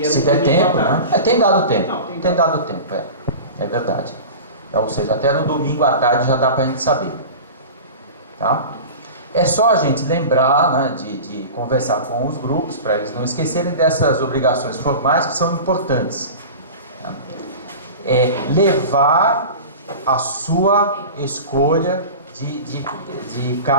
Se der tempo, né? Tem dado tempo. Não, tem dado tempo, é verdade. Ou seja, até no domingo à tarde já dá para a gente saber. Tá? É só a gente lembrar, né, de conversar com os grupos, para eles não esquecerem dessas obrigações formais que são importantes. Tá? Levar a sua escolha de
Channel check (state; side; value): inverted; both; correlation -0.33